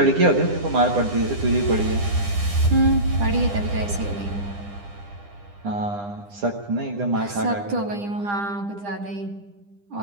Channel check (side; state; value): left; late; 9.9 ms